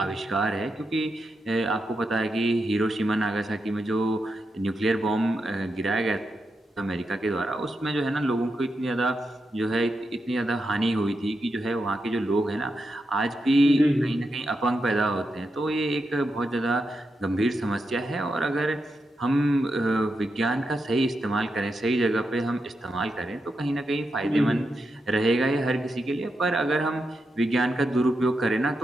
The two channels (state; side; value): normal; both; correlation 0.86